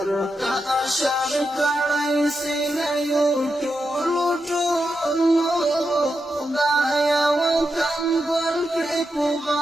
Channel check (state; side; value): normal; both; correlation 0.87